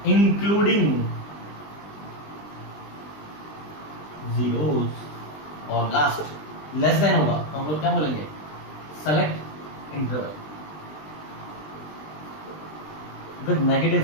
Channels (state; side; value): late; right; 20 ms